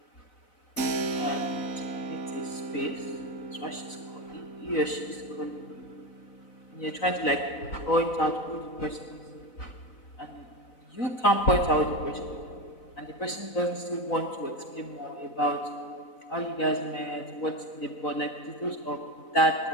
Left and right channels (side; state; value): right; late; 4.0 ms